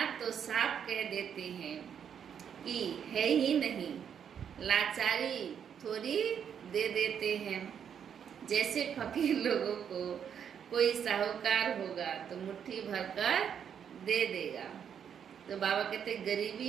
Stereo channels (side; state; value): left; quieter; 8.1 dB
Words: तो साफ कह देते हैं कि है ही नहीं, लाचारी थोड़ी दे देते हैं। जैसे फकीर लोगों को कोई साहूकार होगा तो मुट्ठी भरकर दे देगा, तो बाबा कहते